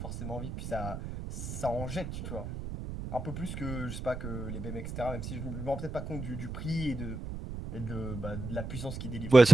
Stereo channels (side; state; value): right; noise; rumble, 6 dB below the sound